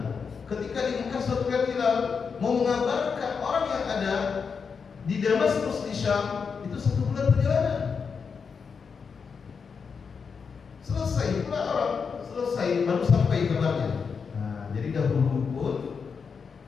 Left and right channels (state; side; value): quieter; right; 5.8 dB